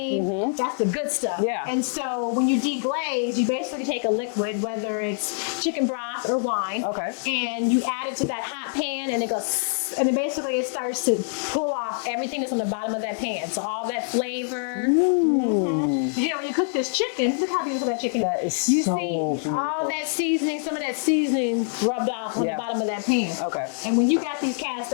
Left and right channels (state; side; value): silent; right; 62 dB below the other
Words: that's the good stuff. Yeah. And so when you deglaze, you basically take a liquid, whether it's chicken broth or wine, Okay. and you add it to that hot pan, and it goes, and then basically it starts to pull off everything that's on the bottom of that pan. So all that flavor. You know, when you cook this chicken, look how beautiful that chicken is. That is You so see beautiful. all that seasoning, some of that seasoning rubbed off on Yeah. the bottom of that pan. Okay. And when you got these cast